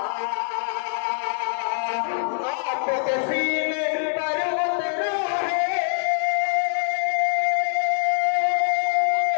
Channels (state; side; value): silent; right; digital silence